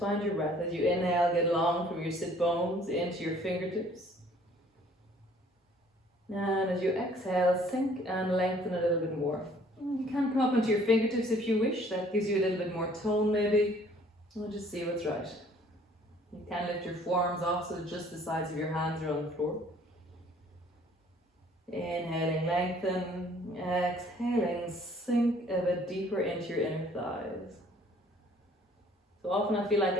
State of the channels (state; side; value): normal; both; correlation 0.57